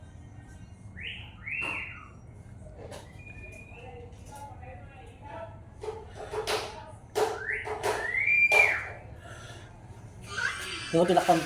Hindi mo tinakpan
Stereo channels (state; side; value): identical; both; correlation 1.00